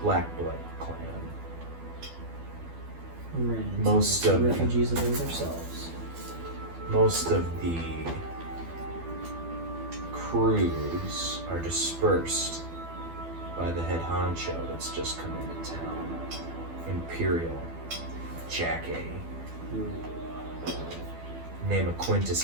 Black Blood clan. Ran into Most some of- refugees of those ourselves. Most of the crews are dispersed by the head honcho that's just come into town, Imperial Jack A. name of Quintus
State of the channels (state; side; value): late; left; 12 ms